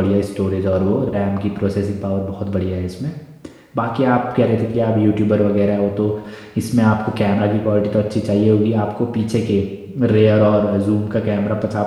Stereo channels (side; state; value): both; identical; correlation 1.00